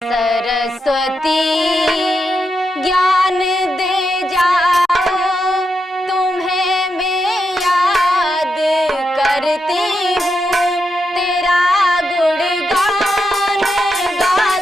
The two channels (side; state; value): both; normal; correlation 0.85